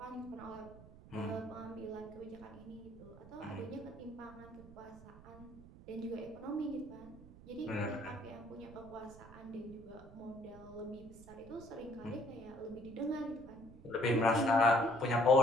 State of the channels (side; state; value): right; noise; rumble, 18 dB below the sound